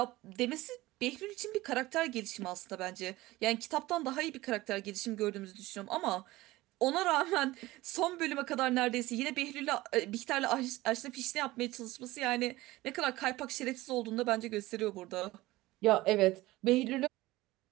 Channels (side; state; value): left; quieter; 18.6 dB